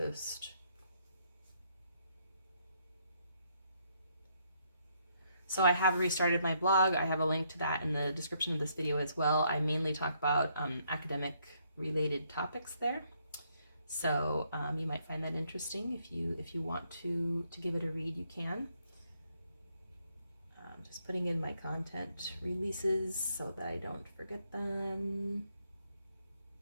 So I have restarted my blog. I have a link to that in the description of this video as well. I mainly talk about academic related topics there. So you might find that interesting. If you want to give it a read, you can. Just putting in my content releases so that I don't forget them.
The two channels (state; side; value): inverted; both; correlation -0.72